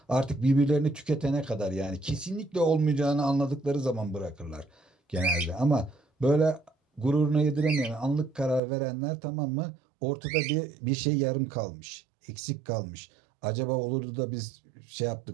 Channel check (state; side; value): drops out; left; at 8.6 s